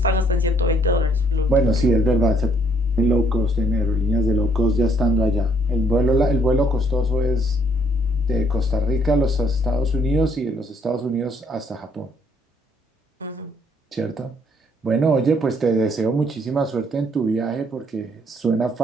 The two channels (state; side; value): normal; both; correlation 0.67